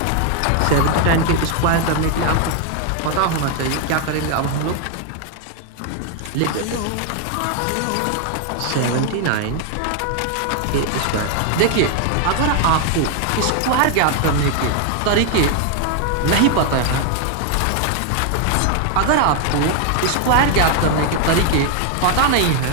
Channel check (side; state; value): both; different; correlation 0.00